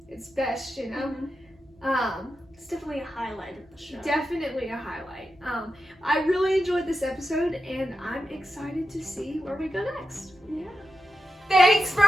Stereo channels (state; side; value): normal; both; correlation 0.89